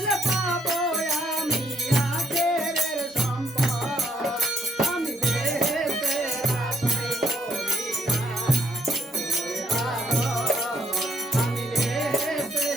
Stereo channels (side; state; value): both; normal; correlation 0.71